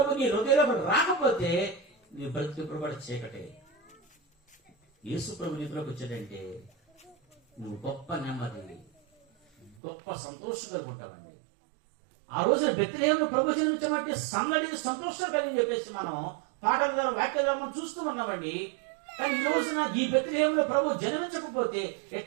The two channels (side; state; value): left; drops out; at 9.8 s